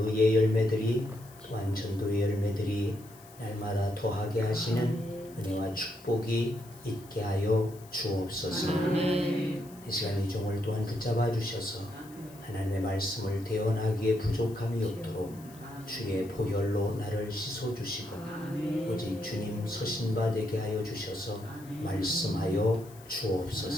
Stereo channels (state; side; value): noise; left; hiss, 23 dB below the sound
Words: 열매들이 또한 전도의 열매들이 날마다 더하게 하시는 은혜와 축복이 있게 하여 주옵소서. 이 시간 이 종을 또한 붙잡아 주셔서 하나님의 말씀을 대언하기에 부족함이 없도록 주의 보혈로 나를 씻어 주시고 오직 주님 서신바 되게 하여 주셔서 말씀하여